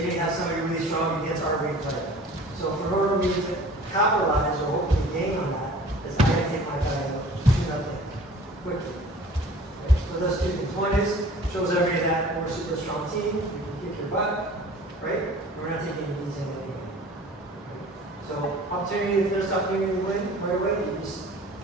may have somebody really strong against our weight player. So in order for me to capitalize or hopefully gain on that, is I gotta take my guy out to nothing quickly. So those two things. One is, shows everybody that we're a super strong team, we can kick your butt, right? We're not taking it easy anyway. So opportunity, if there's opportunity to win right away, you just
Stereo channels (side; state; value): both; normal; correlation 0.46